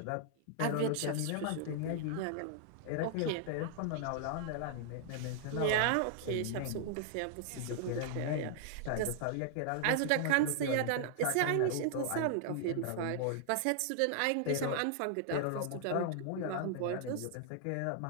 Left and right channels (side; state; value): both; different; correlation -0.01